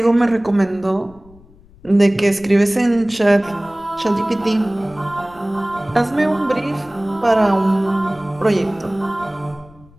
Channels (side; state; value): left; noise; rumble, 25 dB below the sound